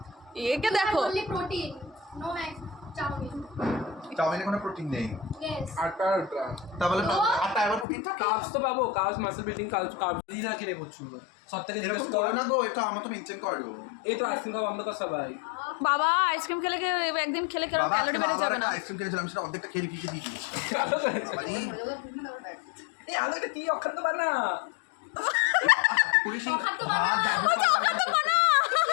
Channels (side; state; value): right; drops out; at 7.9 s